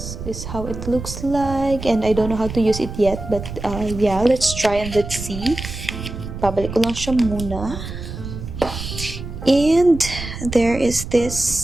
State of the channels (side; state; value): right; noise; rumble, 9 dB below the sound